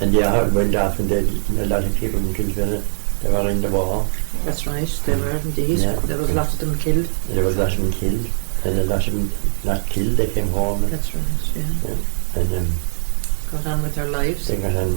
and the heart went off, and a lot of people in Kilfinane, they were in the war. That's right, they were indeed. Yeah. There was a lot of them killed. There was a lot of them killed, and a lot of them not killed. They came home. That's right, yeah. And got on with their lives. They got on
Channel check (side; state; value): left; silent; 66 dB below the other